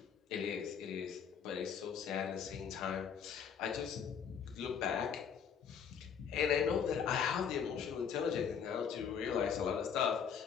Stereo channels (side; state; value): right; quieter; 7.3 dB